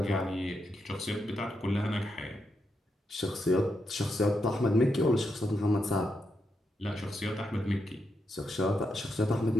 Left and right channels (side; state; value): both; normal; correlation 0.83